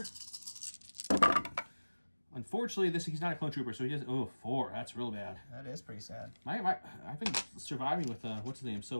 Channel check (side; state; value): both; inverted; correlation -1.00